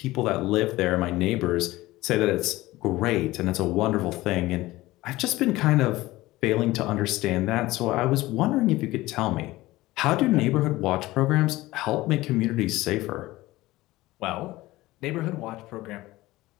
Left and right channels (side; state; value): right; quieter; 18.3 dB